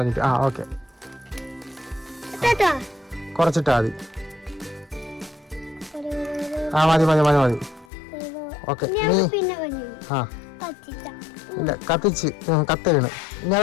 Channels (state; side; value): drops out; right; at 7.9 s